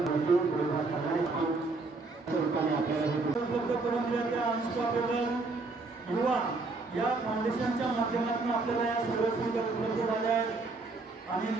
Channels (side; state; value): left; quieter; 3.6 dB